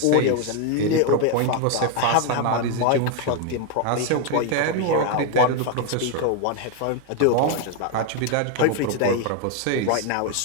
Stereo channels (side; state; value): both; different; correlation 0.01